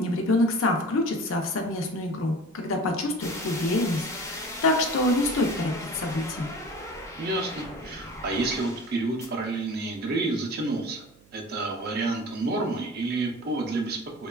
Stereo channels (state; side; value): noise; right; hum, 28 dB below the sound